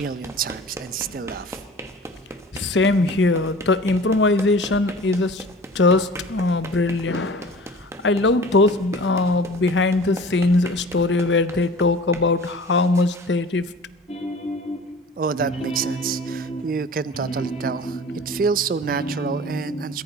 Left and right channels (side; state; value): both; normal; correlation 0.42